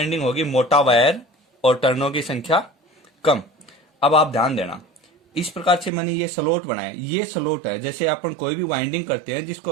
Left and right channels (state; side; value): drops out; left; at 5.9 s